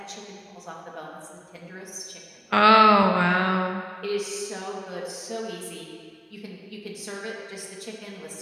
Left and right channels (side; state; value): both; identical; correlation 1.00